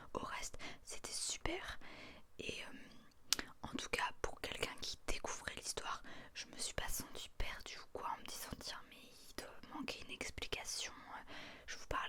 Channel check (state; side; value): identical; both; correlation 1.00